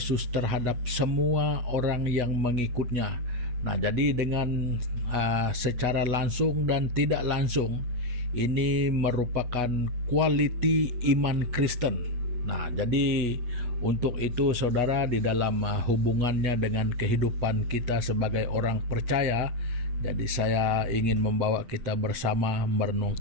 terhadap semua orang yang mengikutnya. Nah, jadi dengan secara langsung dan tidak langsung ini merupakan quality iman Kristen. Nah, jadi untuk itu saudara, di dalam hubungannya dengan kehidupan kita sebagai orang percaya, jadi saya ingin membawa kita bersama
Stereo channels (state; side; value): late; left; 8.4 ms